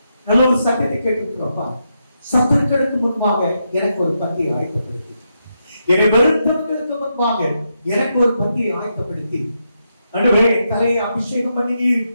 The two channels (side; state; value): both; inverted; correlation -0.83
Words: நல்ல ஒரு சட்டத்தை கேட்டுக்கிறோம்ப்பா. சத்துருக்களுக்கு முன்பாக எனக்கு ஒரு பந்தியை ஆயத்தப்படுத்தி, என்னை வெறுத்தவர்களுக்கு முன்பாக எனக்கு ஒரு பந்தியை ஆயத்தப்படுத்தி, ஆண்டவரே தலையை அபிஷேகம் பண்ணி நீர்